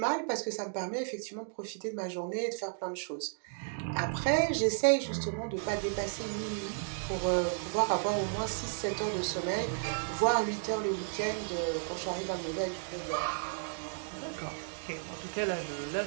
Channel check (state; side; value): silent; left; digital silence